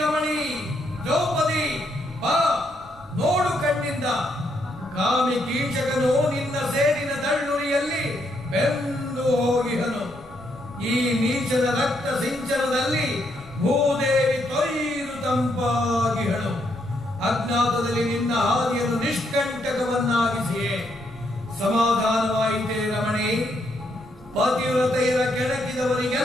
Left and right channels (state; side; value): normal; both; correlation 0.76